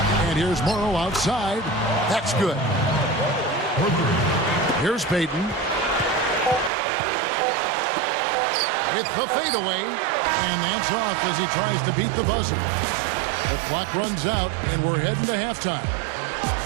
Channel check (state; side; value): drops out; left; at 6.7 s